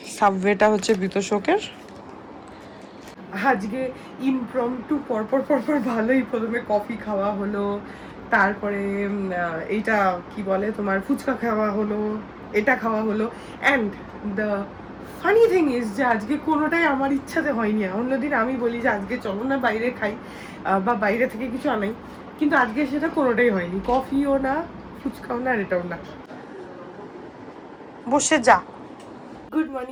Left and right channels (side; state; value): both; identical; correlation 1.00